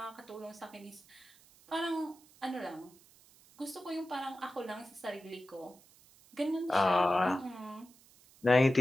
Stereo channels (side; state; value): right; noise; hiss, 26 dB below the sound